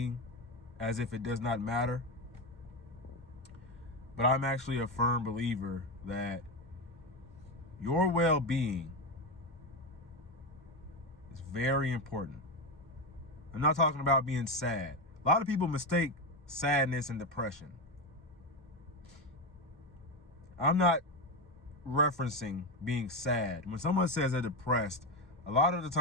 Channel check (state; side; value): normal; both; correlation 0.13